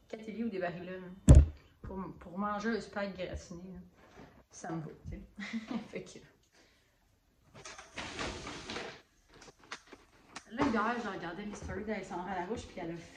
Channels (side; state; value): both; identical; correlation 1.00